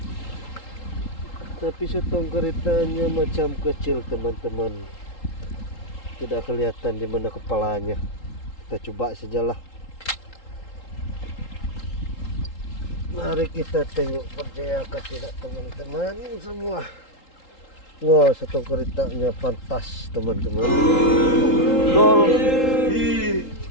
Tapi setong keritanya macam kecil teman-teman, tidak kelihatan di mana kepalanya. Kita coba sajalah. Mari kita tengok, percayakah tidak teman-teman semua. Wah, setong keritanya pantas teman-teman. Gol.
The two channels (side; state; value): right; late; 3.8 ms